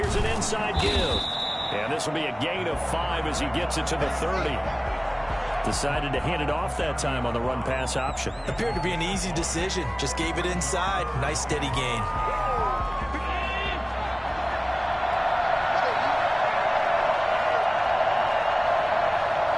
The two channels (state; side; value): identical; both; correlation 1.00